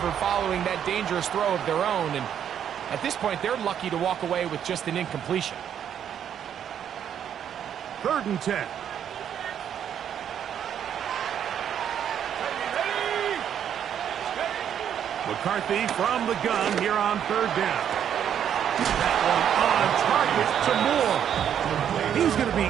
following that dangerous throw of their own. And at this point, they're lucky to walk away with just an incompletion. 3rd and 10. McCarthy from the gun here on 3rd down. That one on target to Moore. He's going to be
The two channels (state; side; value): quieter; left; 9.2 dB